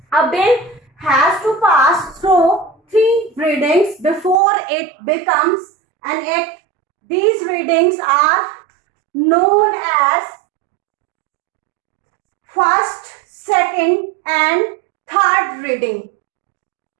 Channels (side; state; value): left; drops out; at 4.4 s